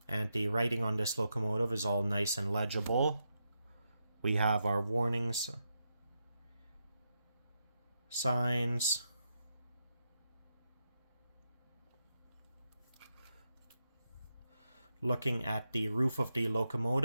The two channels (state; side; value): inverted; both; correlation -0.85